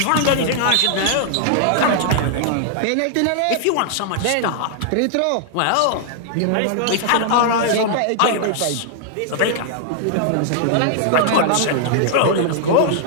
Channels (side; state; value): both; different; correlation -0.01